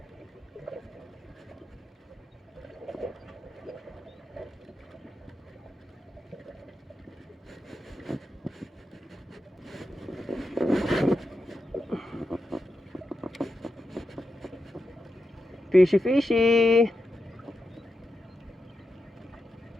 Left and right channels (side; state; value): both; normal; correlation 0.88